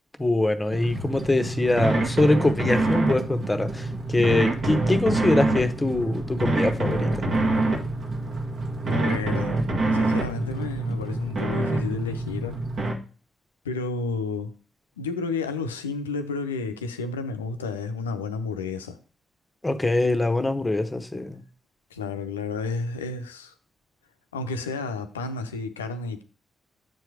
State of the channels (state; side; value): normal; both; correlation 0.81